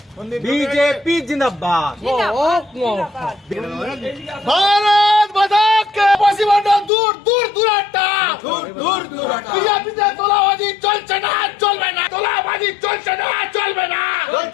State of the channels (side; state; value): right; drops out; at 6.9 s